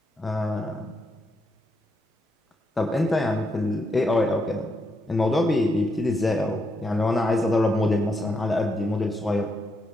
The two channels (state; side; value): normal; both; correlation 0.80